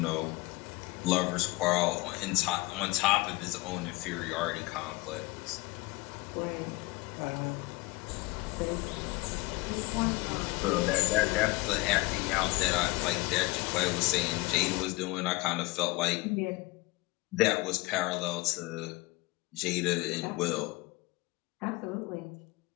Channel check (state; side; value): quieter; right; 22.3 dB